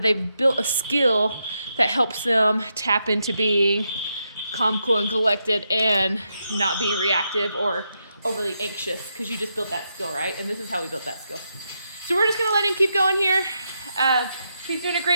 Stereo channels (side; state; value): both; inverted; correlation -0.83